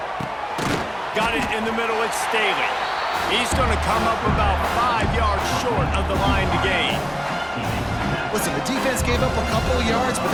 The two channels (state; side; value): identical; both; correlation 1.00